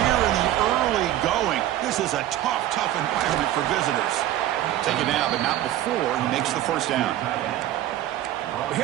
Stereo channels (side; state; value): left; quieter; 13.2 dB